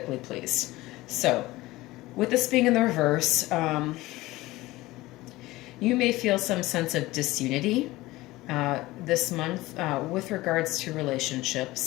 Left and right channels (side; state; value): right; quieter; 18.8 dB